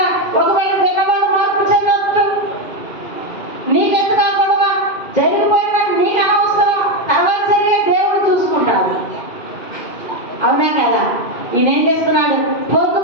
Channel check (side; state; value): right; late; 2.1 ms